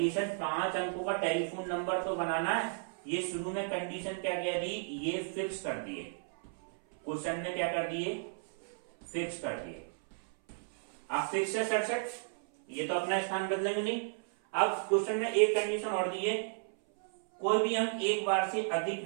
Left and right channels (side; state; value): left; silent; 55 dB below the other